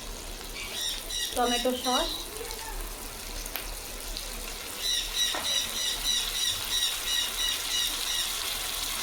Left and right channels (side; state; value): both; identical; correlation 1.00